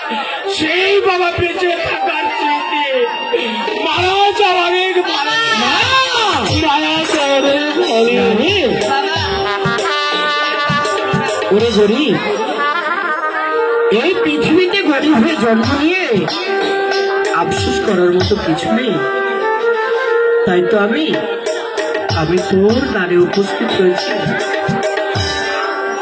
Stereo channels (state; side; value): identical; both; correlation 1.00